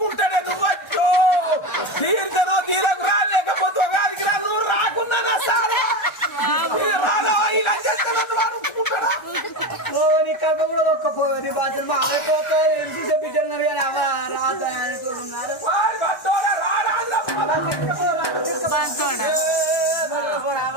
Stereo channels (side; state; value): right; late; 1.3 ms